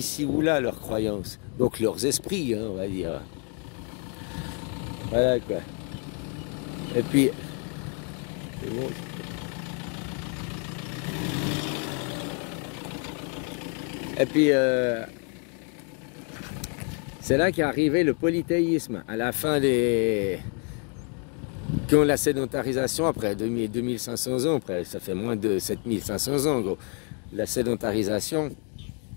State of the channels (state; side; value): quieter; right; 39.3 dB